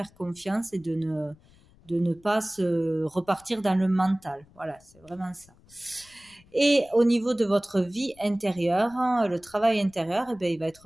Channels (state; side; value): noise; left; rumble, 28 dB below the sound